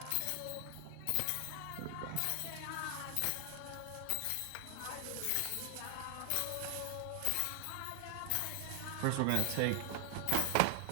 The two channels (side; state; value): both; different; correlation 0.00